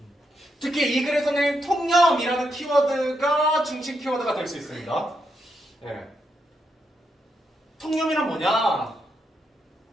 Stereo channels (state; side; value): normal; both; correlation 0.81